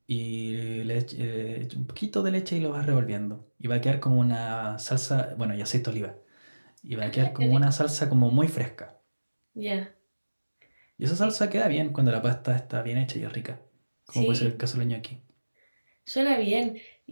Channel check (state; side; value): inverted; both; correlation -1.00